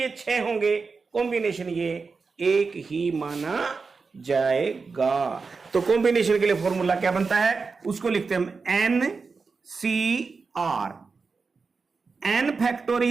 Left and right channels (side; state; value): left; quieter; 4.6 dB